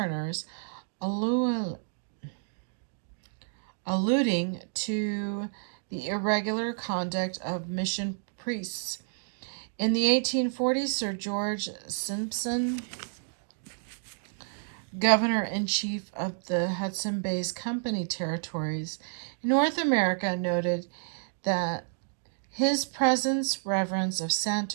alluding to the irregular conduct of mission priests. In the 1840s, Sir George Simpson, Governor-in-Chief of the Hudson Bay Company territories in North America, noted that his presence reverence of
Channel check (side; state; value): left; silent; digital silence